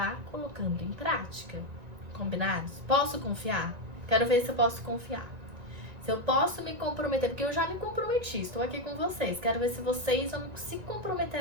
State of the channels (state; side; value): late; left; 1.9 ms